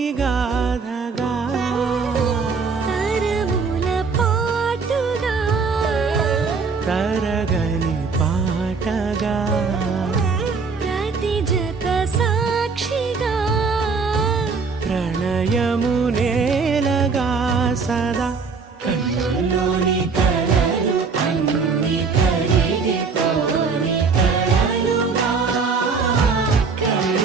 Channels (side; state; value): left; quieter; 4.9 dB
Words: గాథగా తరముల పాటుగా తరగని పాటగా ప్రతి జత సాక్షిగా ప్రణయము నేలగా సదా కన్నుల్లోని కలలు అన్ని కరిగిపోని కలలుగా